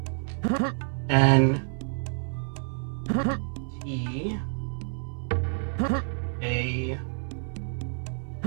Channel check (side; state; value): left; silent; 59 dB below the other